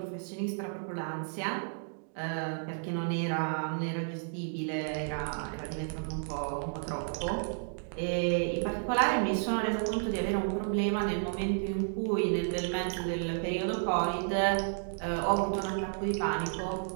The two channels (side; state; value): left; silent; digital silence